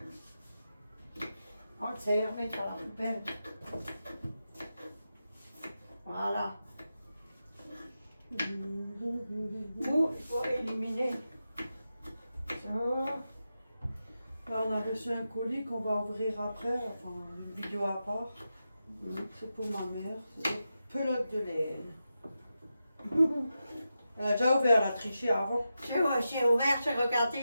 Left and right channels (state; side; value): inverted; both; correlation -0.90